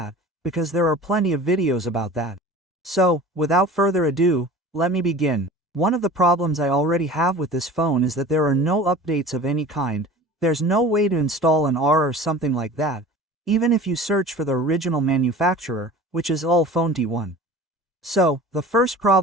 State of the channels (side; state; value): both; normal; correlation 0.40